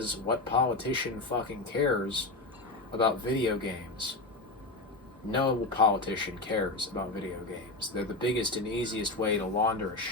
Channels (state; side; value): quieter; right; 3.1 dB